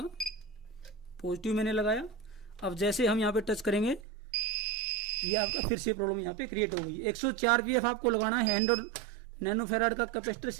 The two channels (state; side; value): drops out; left; at 4.0 s